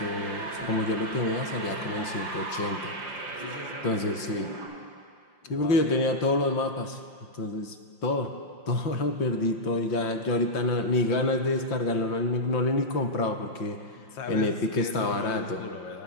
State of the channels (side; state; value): right; late; 5.8 ms